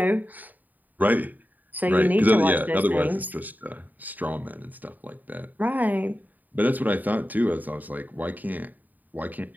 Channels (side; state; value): left; late; 0.084 ms